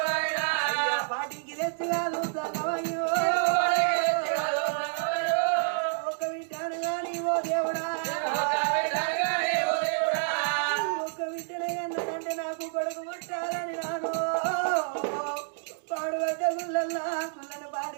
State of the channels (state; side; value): silent; left; digital silence